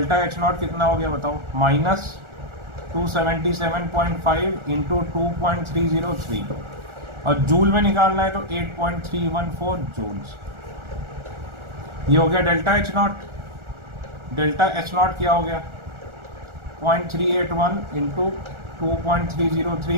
एच नॉट कितना हो गया बताओ, माइनस 277.5 इंटू 2.303, और जूल में निकालना है तो 8.314 जूल्स। ये हो गया delta H not. Delta H not क्या हो गया, 0.381 इंटू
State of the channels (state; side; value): late; left; 1.4 ms